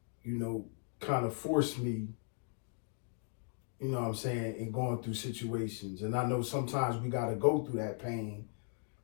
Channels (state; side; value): silent; right; 53 dB below the other